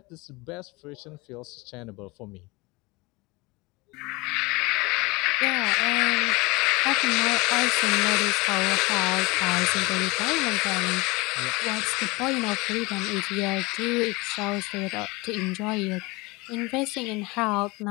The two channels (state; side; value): quieter; right; 24.3 dB